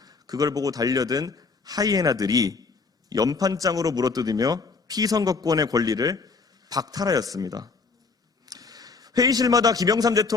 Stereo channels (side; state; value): right; quieter; 4.5 dB